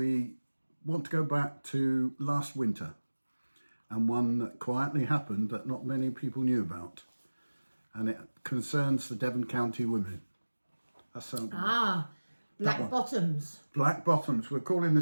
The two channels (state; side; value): inverted; both; correlation -1.00